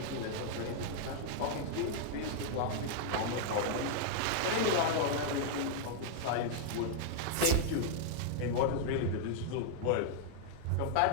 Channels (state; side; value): different; both; correlation 0.00